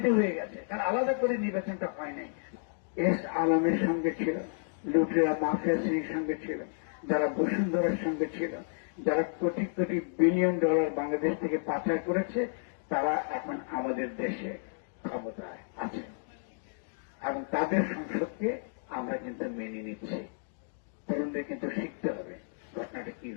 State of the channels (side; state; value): right; silent; digital silence